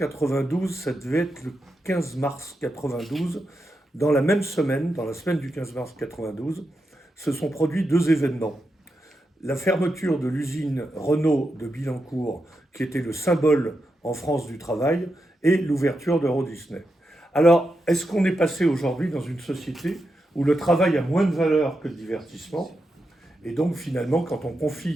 ça devait être le 15 mars 92, dans la même semaine, dans la semaine du 15 mars 92, se sont produits 2 événements. La fermeture de l'usine Renault de Billancourt, qui était le symbole en France du travail, et l'ouverture d'Euro Disney. Alors, est-ce qu'on est passé aujourd'hui dans une société où le travail a moins de valeur que le divertissement? Et donc, finalement, quand on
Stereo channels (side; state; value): both; normal; correlation 0.87